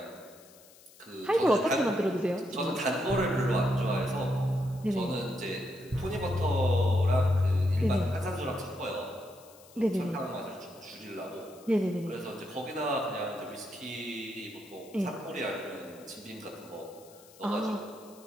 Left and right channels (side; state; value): left; noise; hiss, 24 dB below the sound